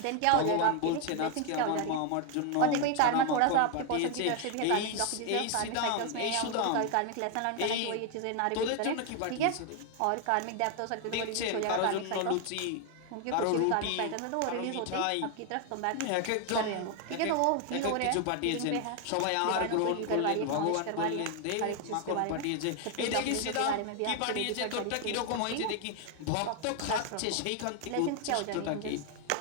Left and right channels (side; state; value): both; different; correlation 0.00